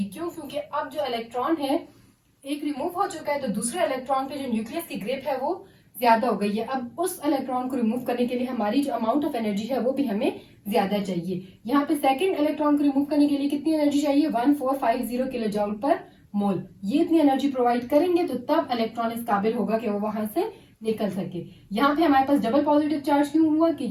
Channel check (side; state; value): both; identical; correlation 1.00